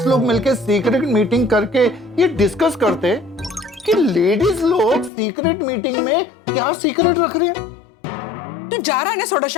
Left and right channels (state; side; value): drops out; right; at 5.1 s